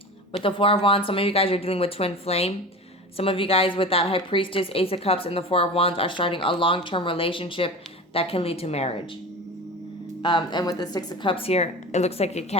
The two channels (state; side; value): normal; both; correlation 0.32